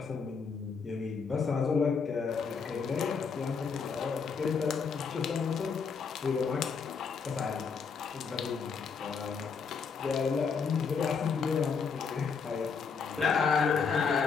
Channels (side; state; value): right; quieter; 5.6 dB